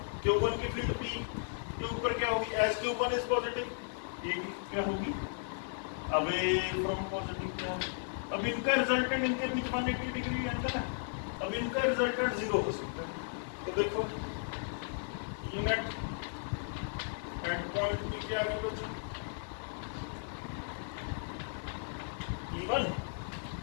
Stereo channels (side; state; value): right; silent; 54 dB below the other